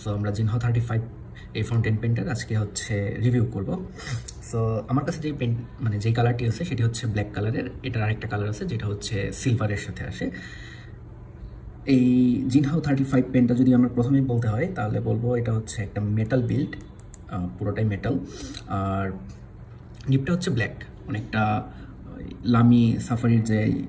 সো আমরা জিনহাও 35 এই ফাউন্টেন পেনটার আজকে হচ্ছে রিভিউ করব। সো আমার কাছে যেই পেন মানে যেই কালারটি আছে সেটি হচ্ছে ব্ল্যাক কালারের। এটার আরেকটা কালার আছে যেটা হচ্ছে সিলভারের সাথে আসে। এই জিনহাও 35 পেনটা যদি আমরা প্রথমেই বলতে হয় তাহলে বলবো এটা হচ্ছে একটা মেটাল বিল্ড, পুরোটাই মেটাল। আর নিপটা হচ্ছে ব্ল্যাক, অনেকটা লামি সাফারির যে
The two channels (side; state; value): both; identical; correlation 1.00